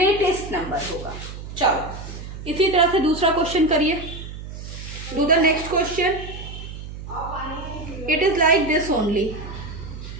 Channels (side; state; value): right; noise; hum, 11 dB below the sound